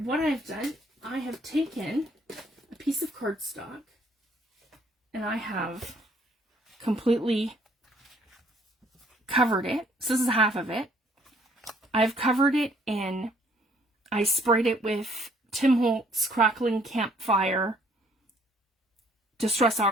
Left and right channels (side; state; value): both; normal; correlation 0.62